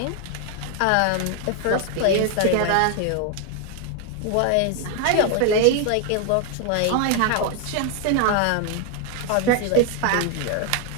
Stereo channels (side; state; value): both; different; correlation 0.01